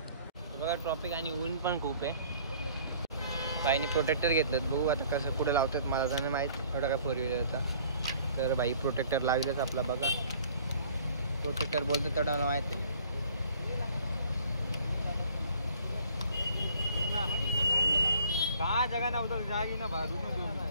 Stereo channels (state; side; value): inverted; both; correlation -0.55